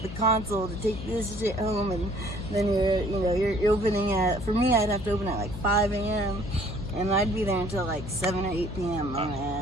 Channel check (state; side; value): noise; left; hum, 10 dB below the sound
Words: console to take this shit home, and then you're opening at. For me, I'd have to open at like 5 a.m. and I'd be there until like 7 or 8 p.m.